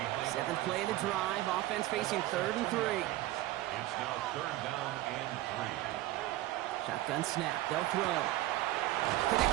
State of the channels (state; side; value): quieter; left; 16.4 dB